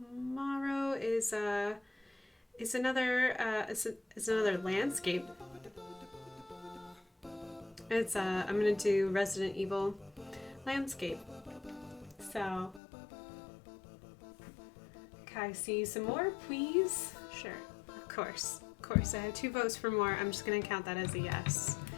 is another landscape. It's I'm gonna do Resident Evil landscape. So can I see some more, please? Sure, of course. I have 2 votes for more. I'm just gonna count that as a yes.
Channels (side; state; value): right; drops out; at 12.8 s